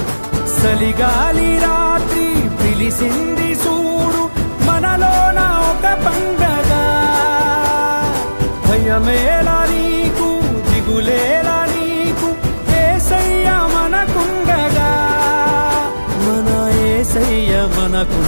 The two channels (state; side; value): inverted; both; correlation -1.00